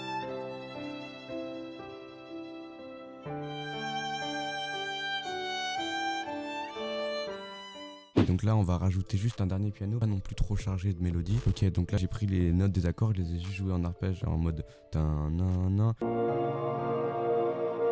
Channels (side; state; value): both; identical; correlation 1.00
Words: Et donc là, on va rajouter juste un dernier piano, pas non plus trop chargé de mélodie. Ok, donc là, j'ai pris les notes des accords, je les ai juste jouées en arpège en mode tin nan nan.